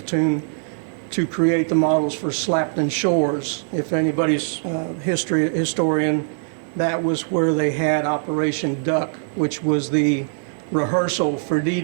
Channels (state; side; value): silent; left; 57 dB below the other